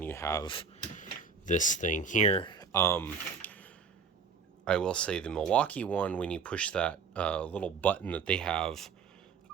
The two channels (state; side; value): quieter; left; 5.7 dB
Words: you have this thing here. I will say the Milwaukee one, when you push that little button that they have,